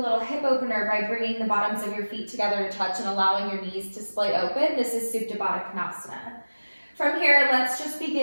hip opener by bringing the bottoms of your feet together to touch and allowing your knees to splay open. This is Supta Baddha Konasana. From here, let's just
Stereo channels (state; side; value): inverted; both; correlation -1.00